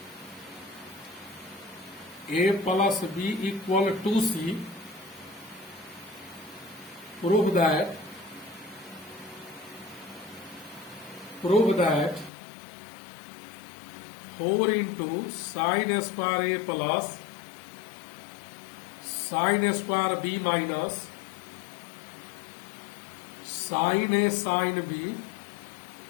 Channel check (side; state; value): right; drops out; at 12.3 s